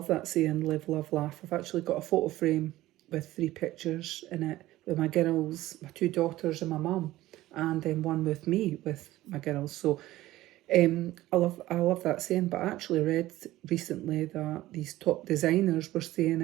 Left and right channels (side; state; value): left; quieter; 16.1 dB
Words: that saying, live, love, laugh. I've actually got a photo frame with 3 pictures in it with my girls, my 2 daughters and my mum, and then one with me with my girls. So I love that saying, but I actually read recently that these top designers were saying